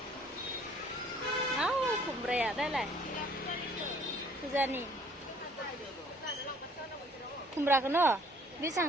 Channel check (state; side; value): normal; both; correlation 0.58